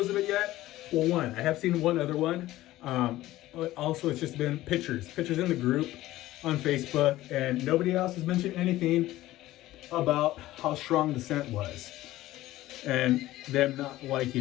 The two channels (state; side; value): quieter; right; 16.0 dB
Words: of it yet. Well, one, I have seen one other one. But also, it's just been pictures in the group on Facebook, and nobody else has mentioned anything about how strong the scent was, and them not